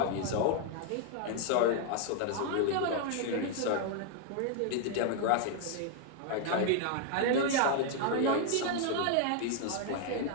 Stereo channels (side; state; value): both; different; correlation 0.00